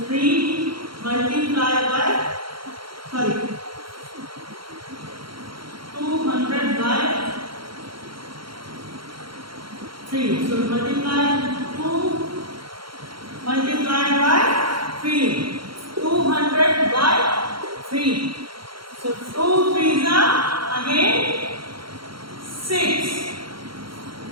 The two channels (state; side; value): late; left; 0.73 ms